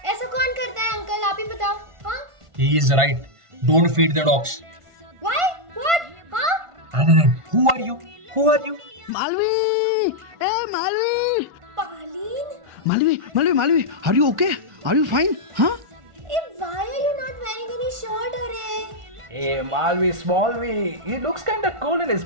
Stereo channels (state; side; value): late; left; 1.5 ms